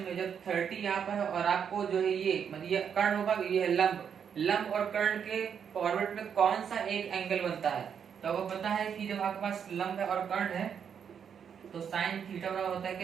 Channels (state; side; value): quieter; left; 7.6 dB